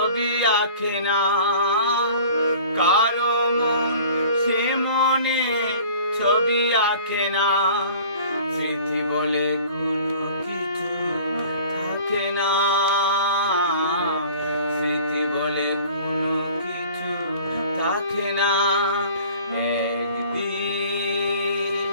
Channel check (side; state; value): both; inverted; correlation -0.47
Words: আঁকে না, কারো মন সে মনে ছবি আঁকে না। স্মৃতি বলে